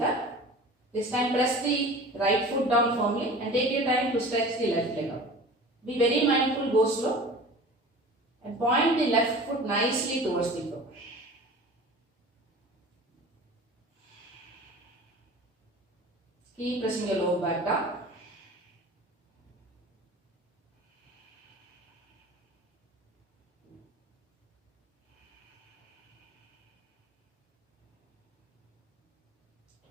This time press the right foot down firmly and take your time to stretch the left leg out. Be very mindful, go slow and point the left foot nicely towards the floor. Keep pressing your lower back down.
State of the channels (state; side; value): normal; both; correlation 0.40